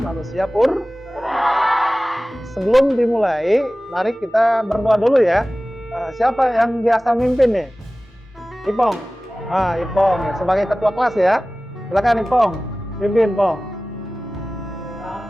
purba. Sebelum dimulai, mari kita berdoa dulu ya. Siapa yang biasa mimpin nih? Ipong. Ipong sebagai ketua kelas ya. Silakan Ipong, pimpin Pong.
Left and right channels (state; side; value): normal; both; correlation 0.97